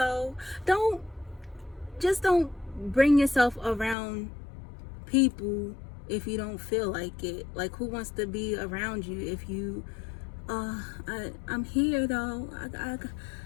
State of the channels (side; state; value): right; drops out; at 4.0 s